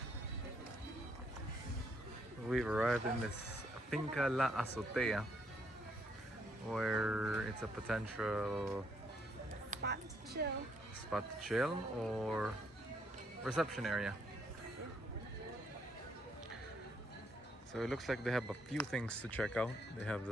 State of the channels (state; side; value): normal; both; correlation 0.72